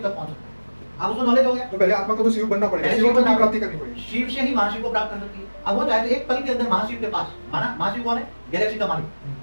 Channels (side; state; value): both; inverted; correlation -1.00